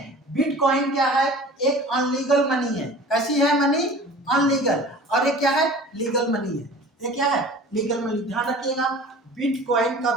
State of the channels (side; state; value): both; normal; correlation 0.42